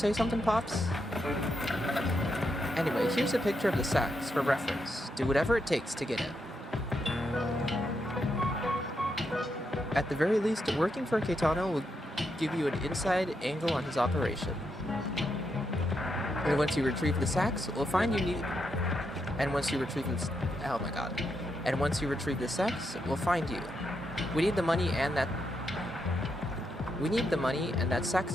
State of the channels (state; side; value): normal; both; correlation 0.82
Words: something, Pops? Anyway, here's a picture of the sax for reference. Do whatever it takes to get it. At the very least, working for Caetano will give you an inside angle on his operation. And once you retrieve the sax, we'll find you need... And once you retrieve the... Oh my god. And once you retrieve the sax, we'll find you. We need the money and that... We need the money, and that sax